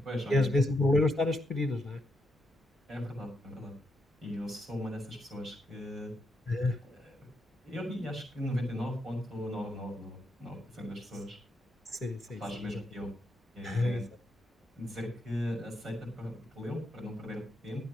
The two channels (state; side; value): normal; both; correlation 0.81